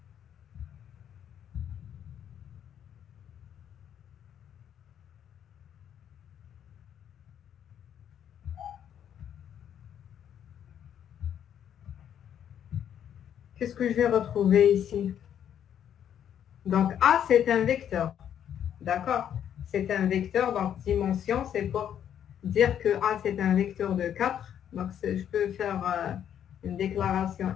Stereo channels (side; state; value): right; quieter; 9.5 dB